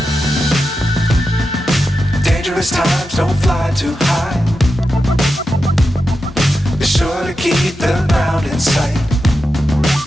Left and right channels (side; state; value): both; normal; correlation 0.89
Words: Times don't fly too high. Be sure to keep the ground in sight.